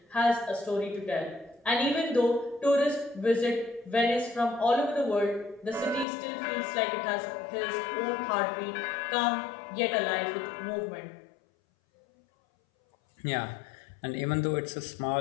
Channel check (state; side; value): drops out; right; at 6.1 s